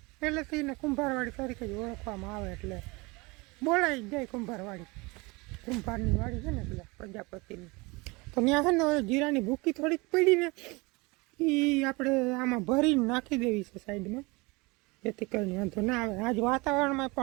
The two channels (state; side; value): quieter; left; 25.5 dB